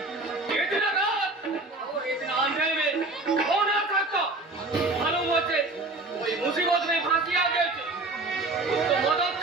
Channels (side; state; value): left; quieter; 3.1 dB